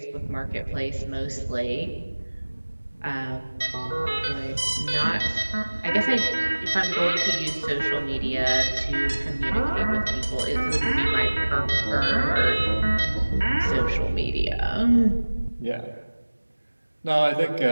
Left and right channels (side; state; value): both; inverted; correlation -1.00